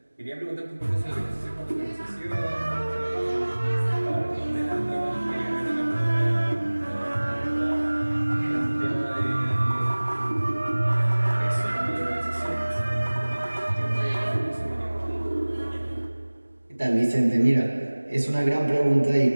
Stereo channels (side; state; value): both; inverted; correlation -1.00